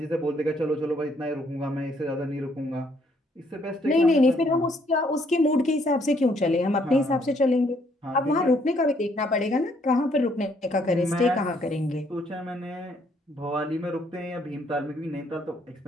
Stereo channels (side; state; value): both; normal; correlation 0.68